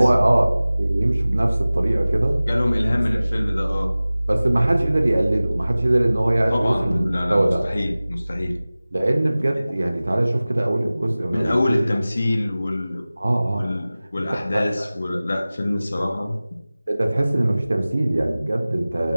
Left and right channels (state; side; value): inverted; both; correlation -0.98